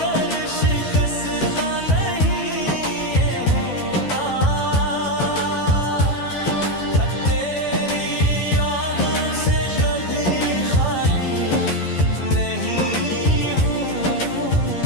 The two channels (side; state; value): right; late; 12 ms